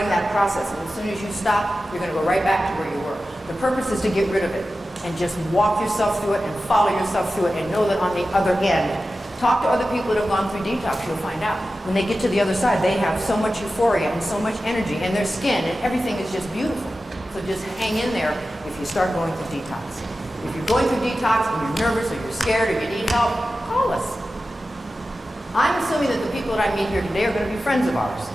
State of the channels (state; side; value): normal; both; correlation 0.94